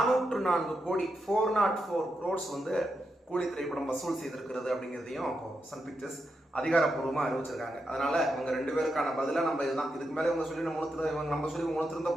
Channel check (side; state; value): both; normal; correlation 0.85